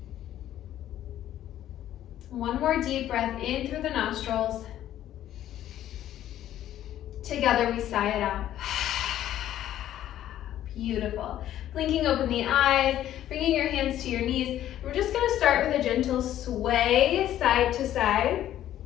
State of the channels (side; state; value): right; quieter; 12.2 dB